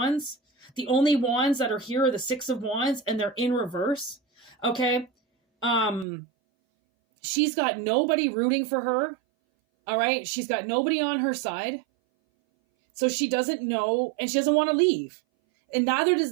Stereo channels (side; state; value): left; drops out; at 6.1 s